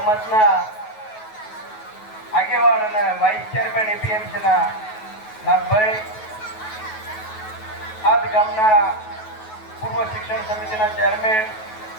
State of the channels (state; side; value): late; right; 9.3 ms